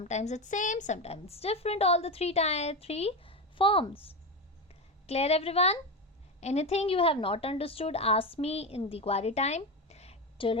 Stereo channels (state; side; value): normal; both; correlation 0.17